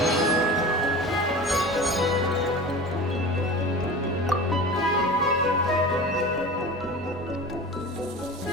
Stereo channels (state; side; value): normal; both; correlation 0.34